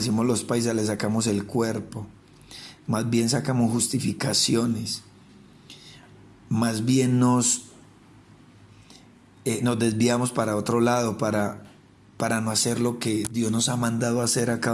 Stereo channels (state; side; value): identical; both; correlation 1.00